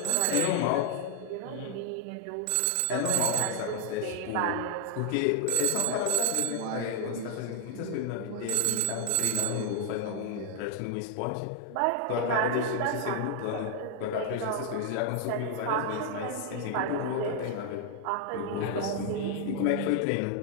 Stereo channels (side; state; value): both; different; correlation 0.00